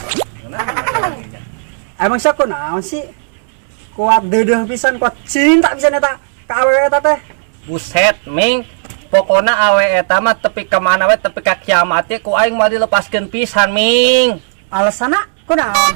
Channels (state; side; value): silent; left; digital silence